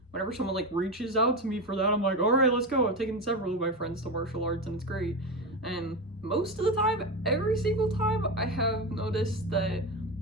whenever someone like reaches out to me for that, I'm like, all right, let's go. I've taken several of my friends to martial arts and it's great. And most of the time, every single time, I have noticed that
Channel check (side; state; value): both; normal; correlation 0.18